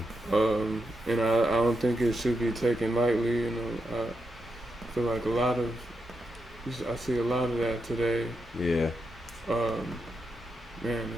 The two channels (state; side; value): normal; both; correlation 0.84